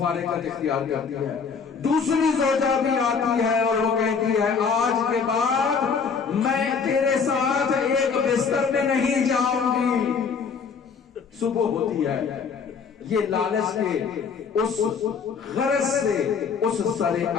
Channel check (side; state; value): right; quieter; 5.8 dB